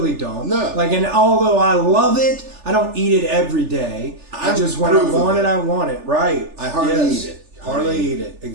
don't. No. Like, and although I love it, I don't eat it every day. I I'm just, when I proof of want it. it, I want it. Right. I hardly Yes. eat it. Hardly eat it.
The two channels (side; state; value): left; late; 3.4 ms